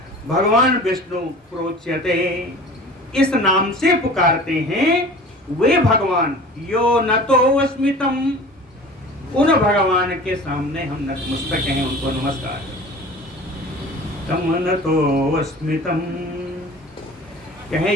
भगवान विष्णु प्रोच्यते इस नाम से पुकारते हैं, वे भगवान यो न तो अस्मितम, उन भगवान के सामने हम नतमस्तक हैं, उनको नमस्कार। तम न तो अस्मितम, कहें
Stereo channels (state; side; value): normal; both; correlation 0.41